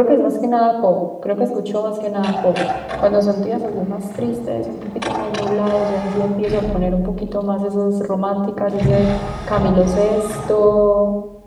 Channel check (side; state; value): both; identical; correlation 1.00